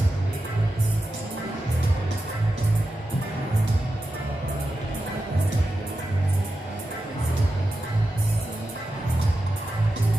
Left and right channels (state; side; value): normal; both; correlation 0.90